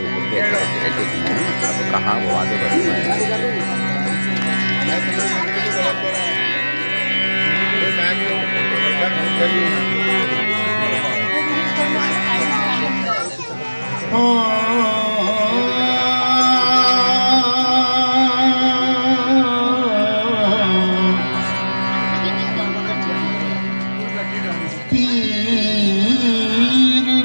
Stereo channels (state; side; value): inverted; both; correlation -1.00